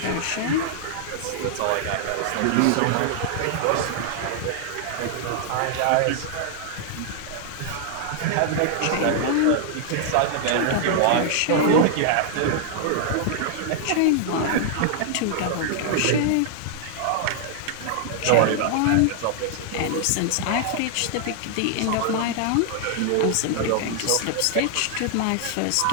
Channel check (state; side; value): different; both; correlation 0.00